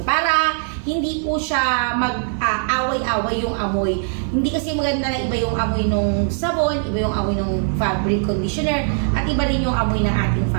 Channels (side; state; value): left; silent; 65 dB below the other